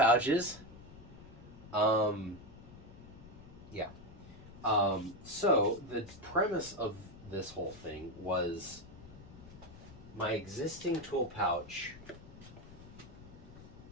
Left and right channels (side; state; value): left; noise; rumble, 17 dB below the sound